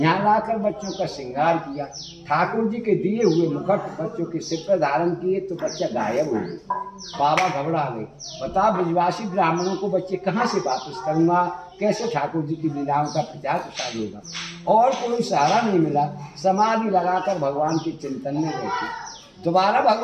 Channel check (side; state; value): both; identical; correlation 1.00